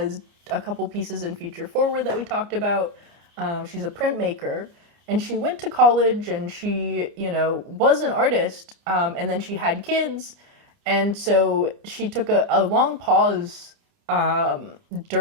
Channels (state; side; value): late; left; 29 ms